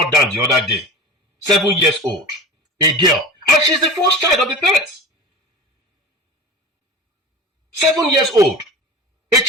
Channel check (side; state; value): both; normal; correlation 0.34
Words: down the other day, 7 years old, a girl, and she's the first child of the parents. 7 years old. A